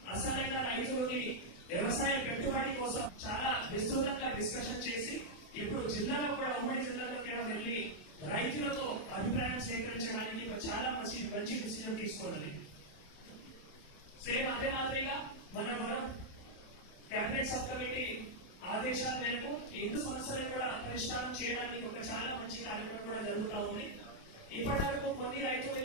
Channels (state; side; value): late; right; 27 ms